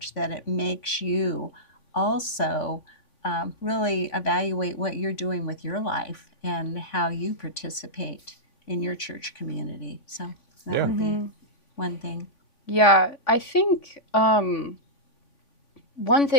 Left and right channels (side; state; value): right; late; 3.5 ms